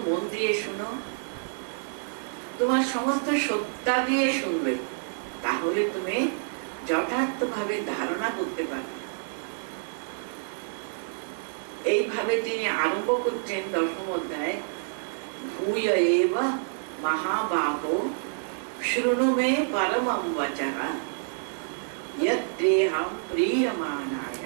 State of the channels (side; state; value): left; silent; digital silence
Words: মন দিয়ে শুনো, তোমার সমস্ত সত্তা দিয়ে শুনবে, তাহলে তুমি যথার্থভাবে ধারণা করতে পারবে। এইভাবে তিনি আরম্ভ করছেন দশম অধ্যায়, ভূয় এব মহাবাহো শৃণু মে পরমং বচঃ यद्देहं प्रीयमाणाय,